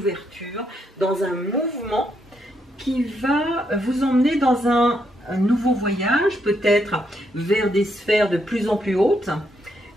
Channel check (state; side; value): normal; both; correlation 0.77